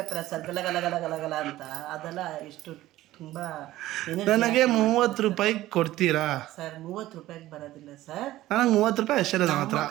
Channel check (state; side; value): quieter; left; 15.7 dB